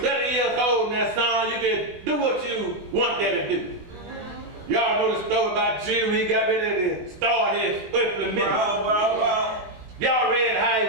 years old now, son, you can do what you want that to do. Y'all know the story about Jesus when he got ready to start his earthly ministry. Y'all read how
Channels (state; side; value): late; left; 20 ms